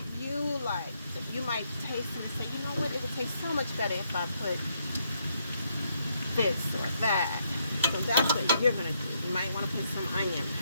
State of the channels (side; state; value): both; inverted; correlation -0.75